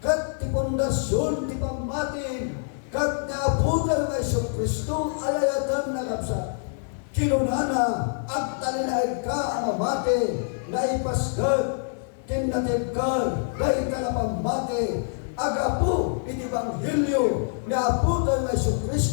kat ti pundasyon ti pammatin kat naabutan nga Isu Kristo alayatan na kapsat kinunana at talinaid ka ang amate na ipasgat kinatibkar, dahil ka na pamati, agapu, iti Ebanghelyo, ni aputan na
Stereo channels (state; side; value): silent; right; 61 dB below the other